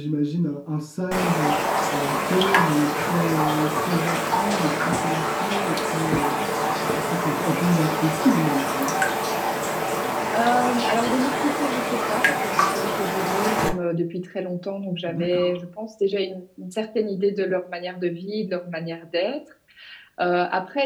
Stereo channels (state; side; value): identical; both; correlation 1.00